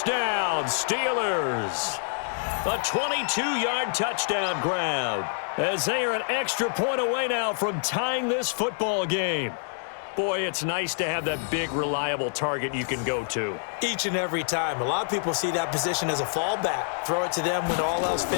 Steelers. A 22-yard touchdown grab, as they are an extra point away now from tying this football game. Boy, it's nice to have that big, reliable target you can go to. Each and every time. A lot of people see that position as a fallback. Throw it to them when all else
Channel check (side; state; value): right; silent; digital silence